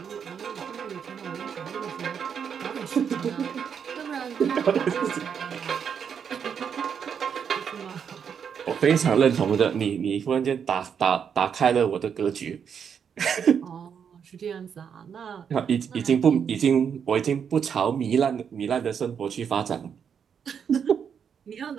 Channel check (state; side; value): quieter; left; 7.4 dB